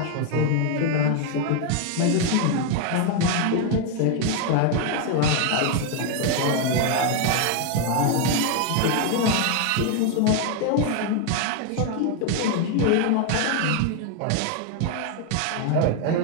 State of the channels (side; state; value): both; different; correlation 0.01